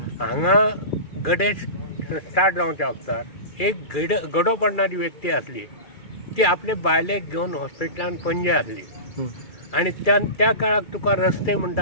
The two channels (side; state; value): right; late; 2.4 ms